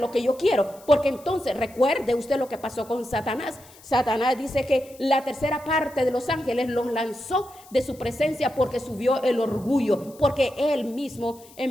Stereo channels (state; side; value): noise; left; hiss, 23 dB below the sound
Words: que yo quiero, porque entonces recuerde usted lo que pasó con Satanás. Satanás dice que la tercera parte de los ángeles los lanzó de su presencia porque subió el orgullo, porque él mismo